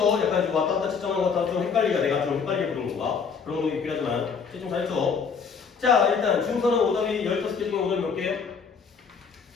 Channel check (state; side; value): quieter; right; 5.9 dB